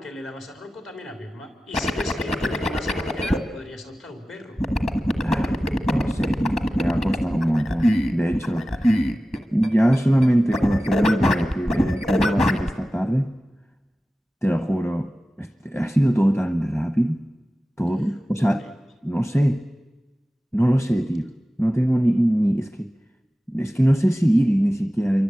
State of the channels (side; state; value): both; normal; correlation 0.96